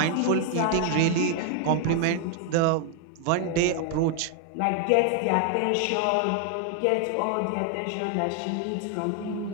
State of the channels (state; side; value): different; both; correlation 0.00